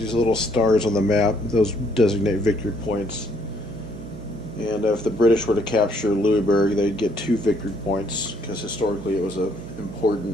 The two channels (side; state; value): right; noise; hum, 13 dB below the sound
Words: little stars on the map. Those designate victory points. And if the British were to capture Louisburg, they'd get 2 victory points, because historically it was a